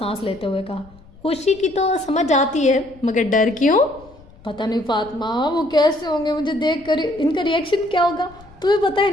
لیتے ہوئے کہا۔ خوشی کی تو سمجھ آتی ہے مگر ڈر کیوں؟ پتہ نہیں فاطمہ، وہ کیسے ہوں گے مجھے دیکھ کر، ان کا ریئیکشن کیا ہوگا؟ تمہیں پتہ ہے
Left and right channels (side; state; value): left; noise; rumble, 24 dB below the sound